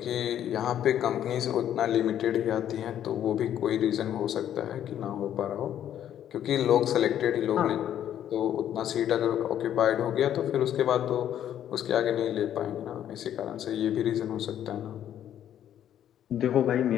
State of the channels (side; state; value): right; quieter; 10.6 dB